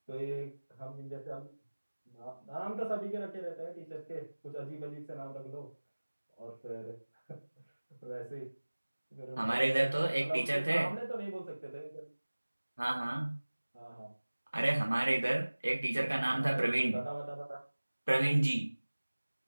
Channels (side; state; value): both; inverted; correlation -1.00